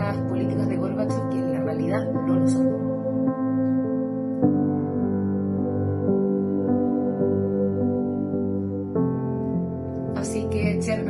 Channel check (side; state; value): both; identical; correlation 1.00